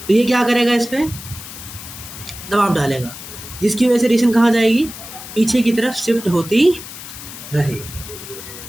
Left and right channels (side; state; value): left; noise; hiss, 13 dB below the sound